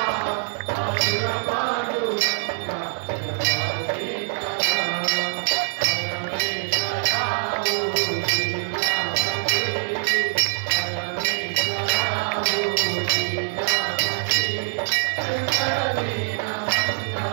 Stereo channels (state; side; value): silent; left; 63 dB below the other